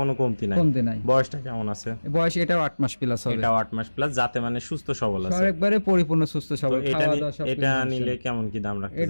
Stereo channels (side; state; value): both; inverted; correlation -1.00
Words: কোনো কমতি নাই। বয়সটা কেমন আছে? বয়স এটাও 8 মাস প্লাস হবে। এটাও 8 মাস প্লাস, যাতে মানে সুস্থ সবল আছে, একবারে পরিপূর্ণ সুস্থ সবল। এটা নিলে কেমন কি দাম রাখতে